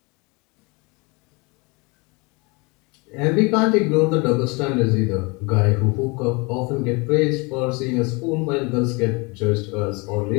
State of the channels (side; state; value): right; quieter; 28.0 dB